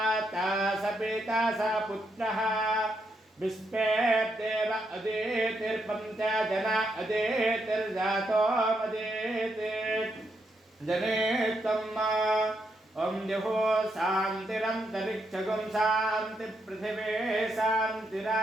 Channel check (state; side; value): normal; both; correlation 0.79